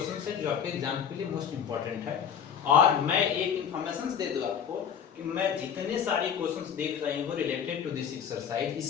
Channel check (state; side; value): quieter; right; 8.0 dB